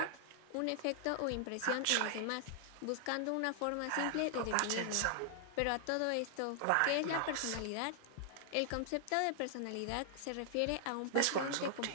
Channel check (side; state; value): both; different; correlation -0.01